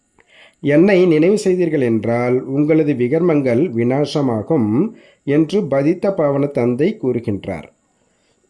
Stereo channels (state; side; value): identical; both; correlation 1.00